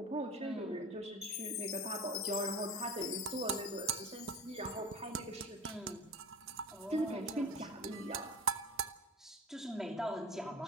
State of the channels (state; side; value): normal; both; correlation 0.33